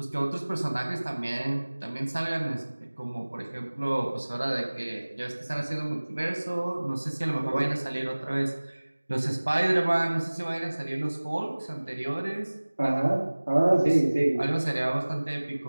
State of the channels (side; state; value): both; inverted; correlation -1.00